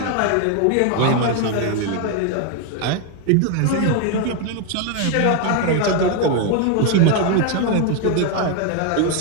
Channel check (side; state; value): both; different; correlation 0.01